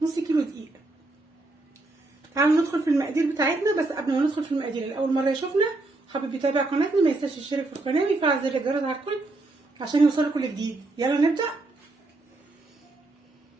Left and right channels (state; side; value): quieter; left; 3.0 dB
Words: نص كيلو دقيق. تعالوا ندخل في المقادير بتاعتنا، بس قبل ما ندخل في المقادير الاول مره يشوفنا حابب يتابع قناتنا ما ينساش يشترك في القناه ويفعل زر الجرس على الكل عشان يوصلوا كل جديد. يلا نبدا.